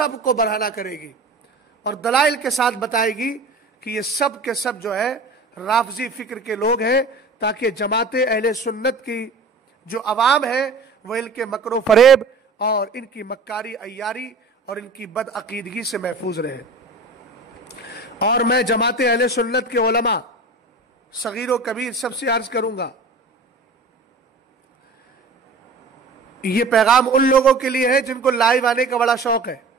کو برہنہ کرے گی اور دلائل کے ساتھ بتائے گی کہ یہ سب کے سب جو ہے رافضی فکر کے لوگ ہیں، تاکہ جماعت اہل سنت کی جو عوام ہے وہ ان کے مکر و فریب اور ان کی مکاری عیاری اور ان کی بد عقیدگی سے محفوظ رہے۔ اور میں جماعت اہل سنت کے علماء صغیر و کبیر سب سے عرض کروں گا، یہ پیغام ان لوگوں کے لیے ہے جن کو لائیو آنے کا بڑا شوق ہے۔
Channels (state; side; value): quieter; left; 3.5 dB